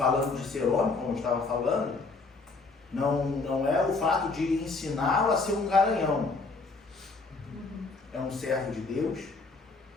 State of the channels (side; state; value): right; quieter; 3.9 dB